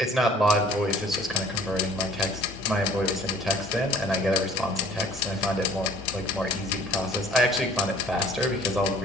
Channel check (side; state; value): both; normal; correlation 0.53